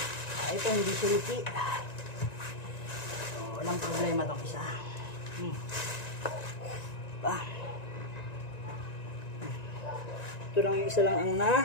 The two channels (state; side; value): late; right; 1.9 ms